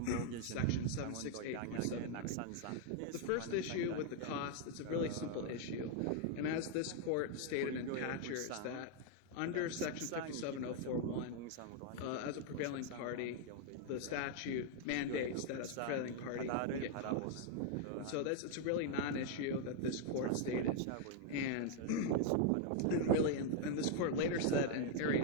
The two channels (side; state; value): both; different; correlation 0.00